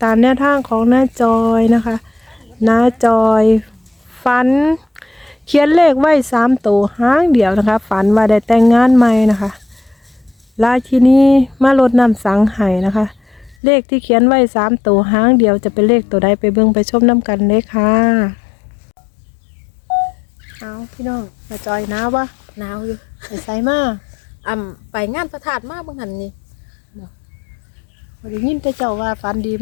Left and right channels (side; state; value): right; drops out; at 13.6 s